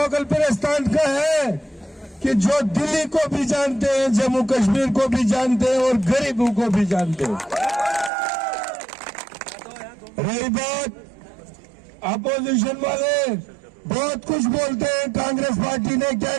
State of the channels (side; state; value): left; drops out; at 8.1 s